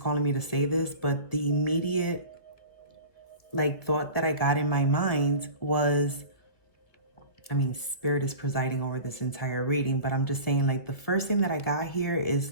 me to say this, but the immediate thought that I got in my mind was, I mean, Spirit is presiding over this entire reading, but I'm just saying, the first thing that I got here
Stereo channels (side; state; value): right; late; 1.7 ms